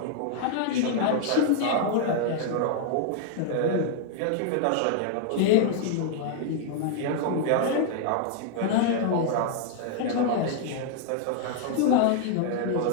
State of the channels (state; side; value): different; both; correlation 0.00